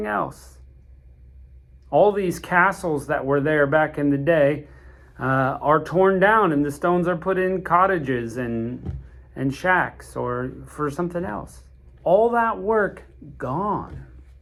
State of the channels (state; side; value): identical; both; correlation 1.00